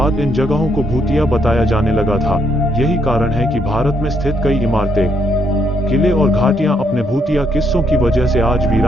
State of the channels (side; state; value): both; normal; correlation 0.74